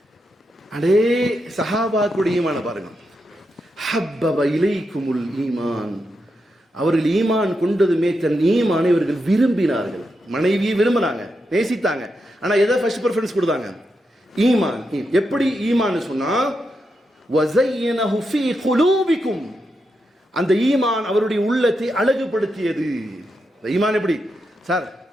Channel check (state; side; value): normal; both; correlation 0.85